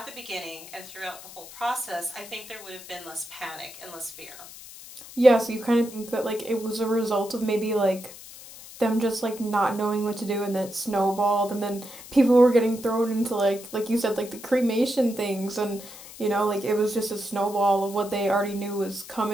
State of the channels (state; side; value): noise; left; hiss, 16 dB below the sound